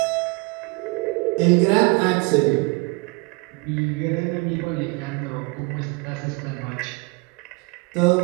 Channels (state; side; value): quieter; left; 27.6 dB